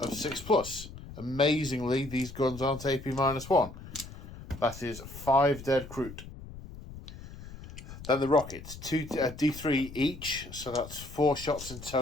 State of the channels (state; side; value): noise; left; rumble, 14 dB below the sound